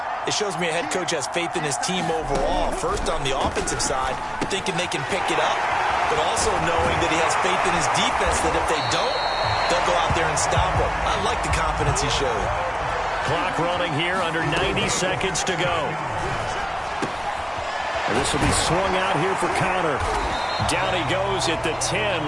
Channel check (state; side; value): identical; both; correlation 1.00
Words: It shows me a head coach has faith in his team overall. First on the offensive side, thinking they can pick it up, but also knowing that he has faith in his defense that if they don't, they'll go out there and stop him. I like the confidence he showed. Clock running here, under 90 seconds to go. And this will be swung out here for Connor. Down he goes at the